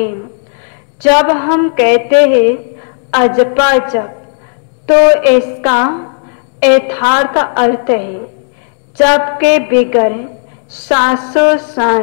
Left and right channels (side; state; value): right; silent; digital silence